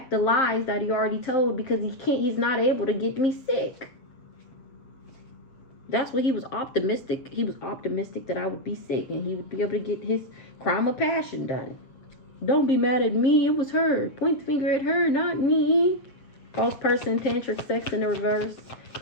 the lies that he already told, because he's not able to get me sick. That's what he was optimistic. He was optimistic that I would be sick and he would be able to get his crime of passion done. Don't be mad at me. It was her. Point the finger at her, not me. False person, tantric sex in the reverse.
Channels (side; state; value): right; late; 7.8 ms